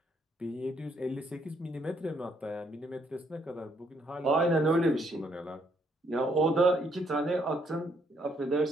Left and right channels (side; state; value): both; normal; correlation 0.70